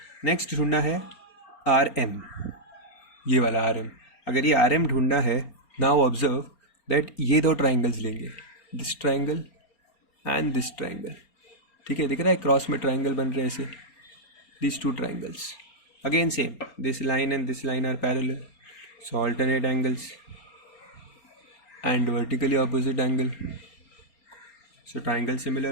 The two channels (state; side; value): late; right; 4.3 ms